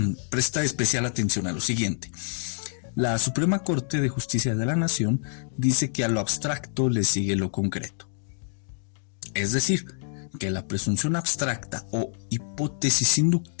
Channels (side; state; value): right; silent; digital silence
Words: presta especial atención a lo siguiente. La Suprema Corte de Justicia de la Nación dice que a lo abstracto le sigue lo concreto. Es decir, que la presunción abstracta o hipótesis